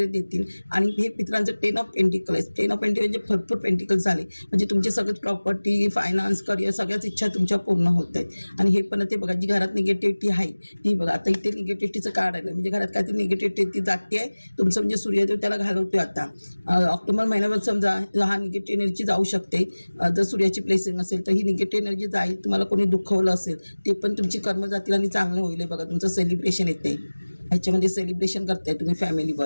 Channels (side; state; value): both; inverted; correlation -1.00